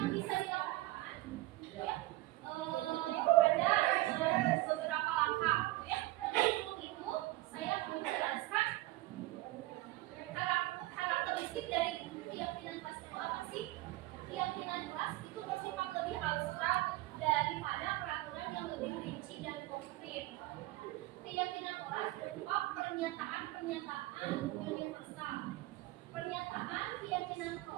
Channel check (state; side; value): quieter; left; 18.5 dB